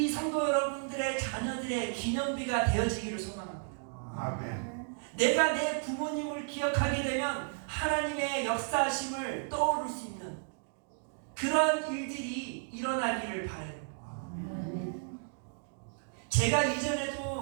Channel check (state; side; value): silent; left; 56 dB below the other